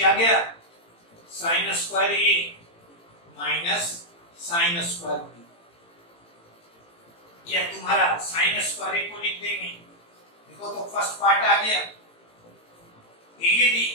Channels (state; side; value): late; right; 18 ms